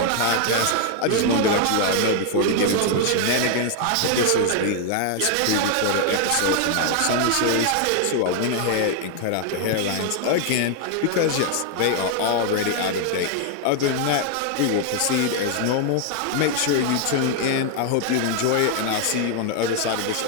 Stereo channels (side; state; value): both; different; correlation 0.00